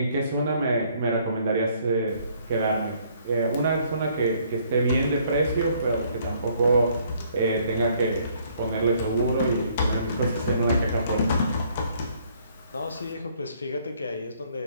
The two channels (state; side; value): inverted; both; correlation -0.64